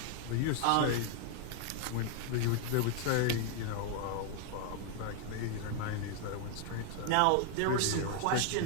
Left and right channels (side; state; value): both; different; correlation 0.00